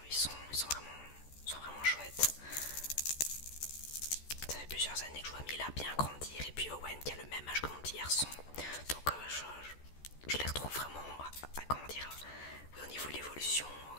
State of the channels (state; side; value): late; right; 14 ms